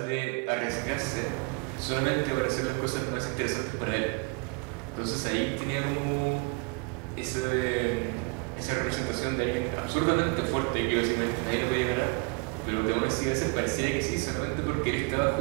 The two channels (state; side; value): quieter; left; 30.4 dB